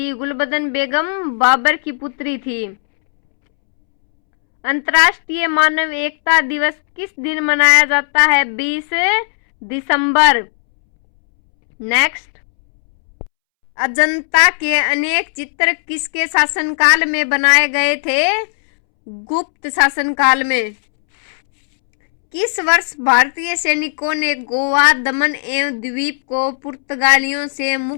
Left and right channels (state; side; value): silent; right; 69 dB below the other